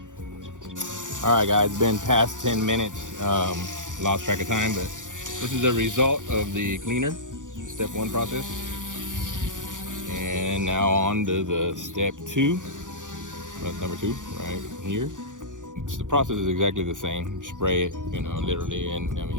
Alright guys, it's been past 10 minutes. Lost track of time, but this is the result of the cleaner, step 1 process. And now on to the step 2. Number 2, right here. The process is exactly the same. Spray it, you know, literally, and I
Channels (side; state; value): left; late; 0.87 ms